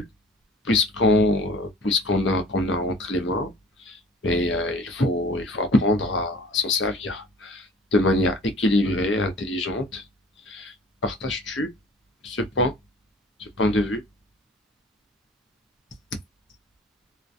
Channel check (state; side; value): normal; both; correlation 0.48